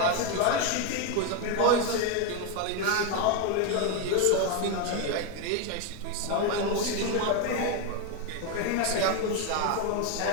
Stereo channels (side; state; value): both; different; correlation 0.02